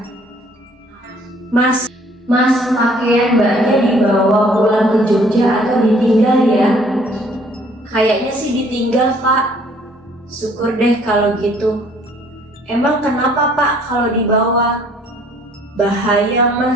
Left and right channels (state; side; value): normal; both; correlation 0.59